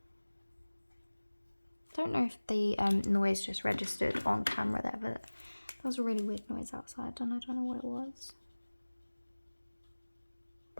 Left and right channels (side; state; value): both; inverted; correlation -1.00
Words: Don't know if the noise just registered on camera there, but that was a really weird noise outside and I don't know what it was.